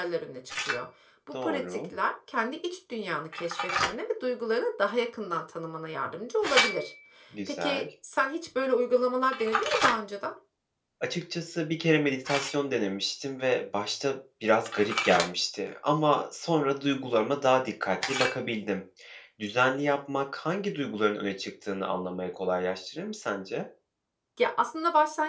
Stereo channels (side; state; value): both; identical; correlation 1.00